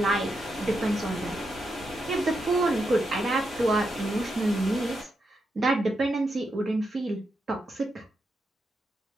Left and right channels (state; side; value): normal; both; correlation 0.84